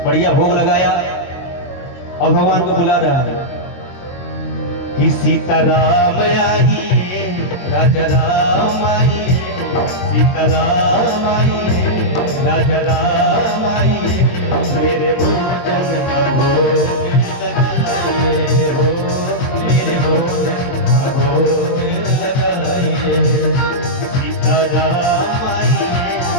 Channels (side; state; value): right; late; 22 ms